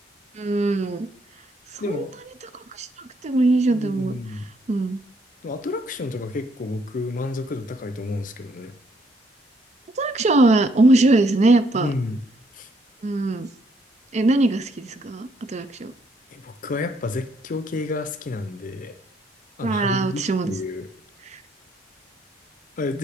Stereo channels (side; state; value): both; normal; correlation 0.70